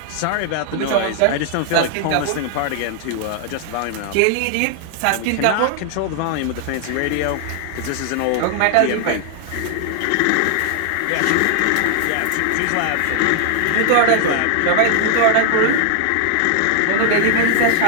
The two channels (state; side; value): different; both; correlation 0.00